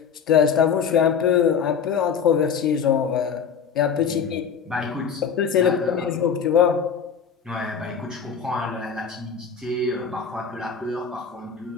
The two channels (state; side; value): quieter; right; 6.8 dB